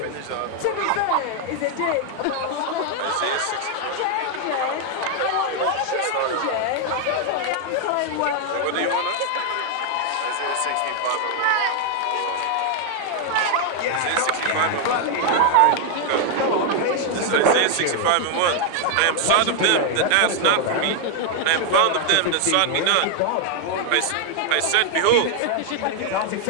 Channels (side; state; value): both; different; correlation 0.00